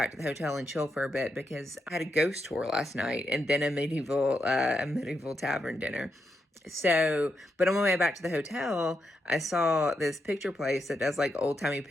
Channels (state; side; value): normal; both; correlation 0.83